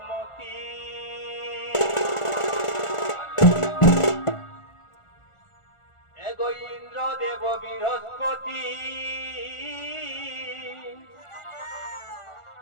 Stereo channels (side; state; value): right; late; 1.4 ms